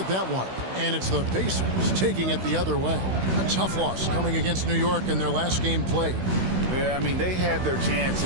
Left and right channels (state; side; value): late; left; 16 ms